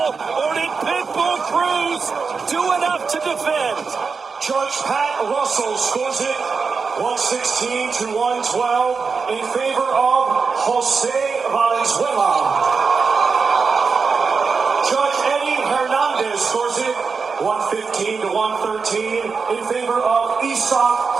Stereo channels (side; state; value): left; quieter; 5.1 dB